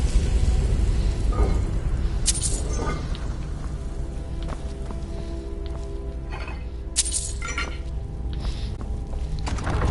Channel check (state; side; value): identical; both; correlation 1.00